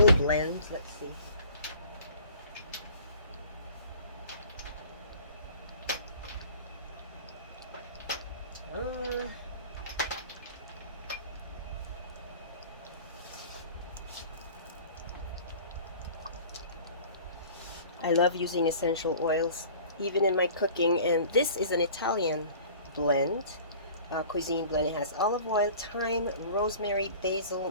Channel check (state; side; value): inverted; both; correlation -0.45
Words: blend. Let's see. I love using essential oils, even in my cooking, and this is an Italian blend, cuisine blend. It has olive oil, thyme, rosemary,